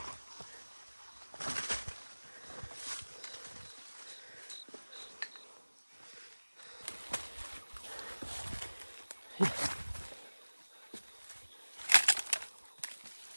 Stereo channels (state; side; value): inverted; both; correlation -1.00